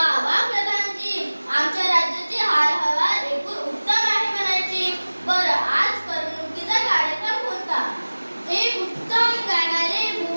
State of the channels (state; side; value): inverted; both; correlation -1.00